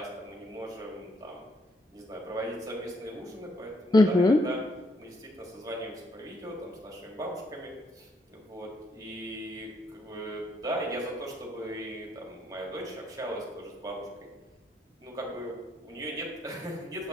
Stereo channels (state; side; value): normal; both; correlation 0.72